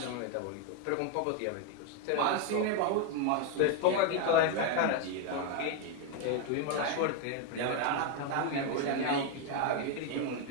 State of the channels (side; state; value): both; different; correlation 0.01